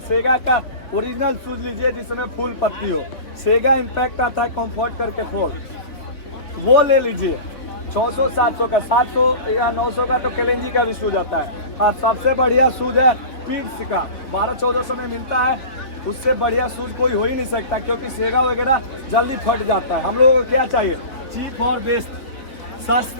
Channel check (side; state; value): right; late; 3.5 ms